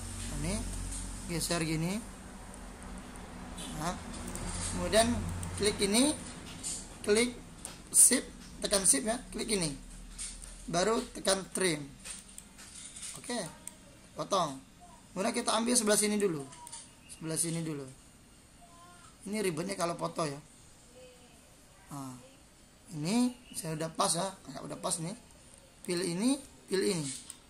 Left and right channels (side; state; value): both; identical; correlation 1.00